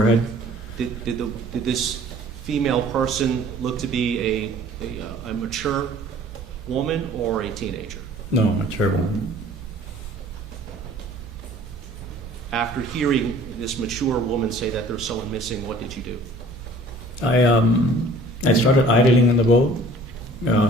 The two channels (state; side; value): normal; both; correlation 0.51